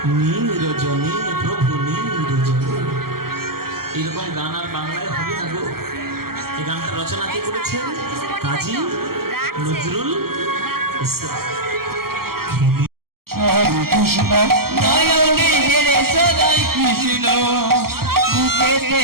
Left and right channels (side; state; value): left; late; 0.94 ms